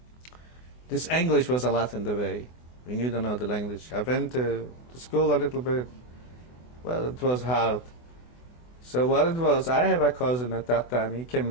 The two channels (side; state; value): right; late; 24 ms